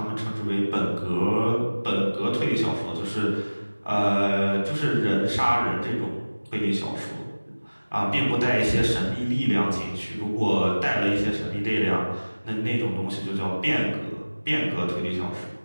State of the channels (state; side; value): inverted; both; correlation -1.00